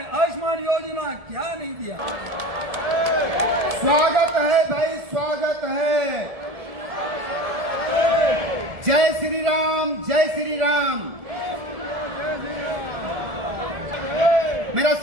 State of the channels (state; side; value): late; left; 1.7 ms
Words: आयुष्मान योजना, क्या नहीं दिया। स्वागत है भाई, स्वागत है। जय श्री राम, जय श्री राम। मेरा